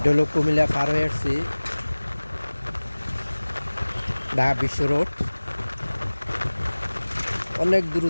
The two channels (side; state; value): both; inverted; correlation -1.00